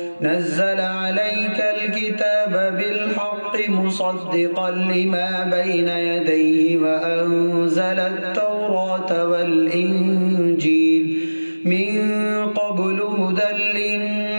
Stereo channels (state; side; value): inverted; both; correlation -1.00